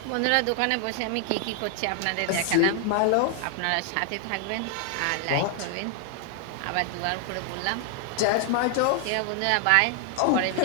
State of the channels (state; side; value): different; both; correlation 0.00